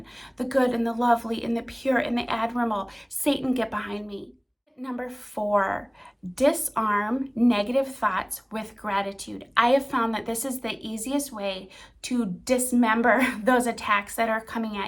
the good and the lovely and the pure and the admirable. Satan, get behind me. Number 4, disarm negative thoughts with gratitude. I have found that this is the easiest way to dismember those attacks that are coming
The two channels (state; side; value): identical; both; correlation 1.00